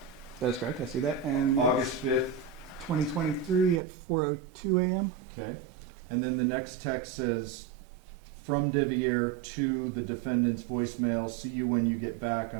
That is correct, I see that. And August 5th. 2023 at 4:02 a.m. Okay. And then the next text says, "From Devier to the defendant's voicemail. See you when you get back.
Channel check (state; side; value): drops out; left; at 3.8 s